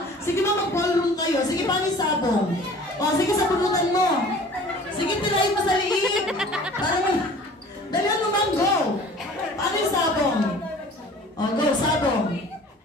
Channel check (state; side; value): normal; both; correlation 0.46